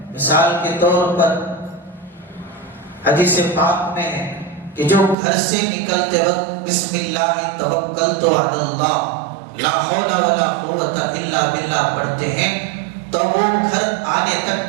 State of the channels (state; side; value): drops out; left; at 5.2 s